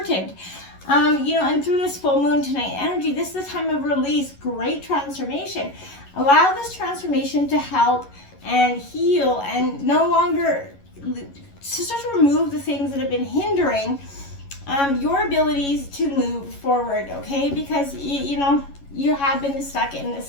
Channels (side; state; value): right; late; 11 ms